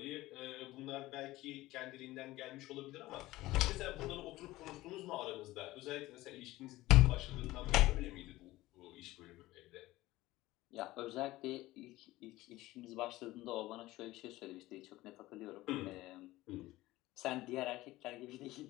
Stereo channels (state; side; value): quieter; right; 17.7 dB